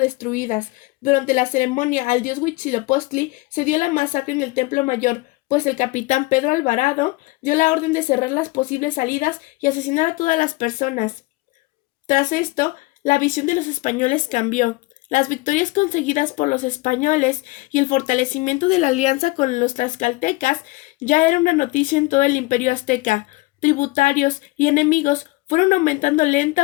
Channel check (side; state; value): right; quieter; 22.8 dB